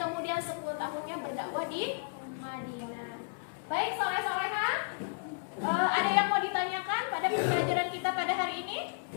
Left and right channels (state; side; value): silent; right; digital silence